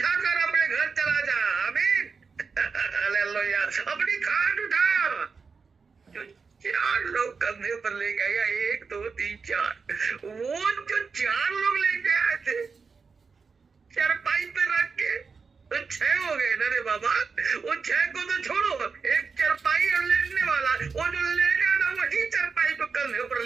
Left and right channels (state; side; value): quieter; left; 5.1 dB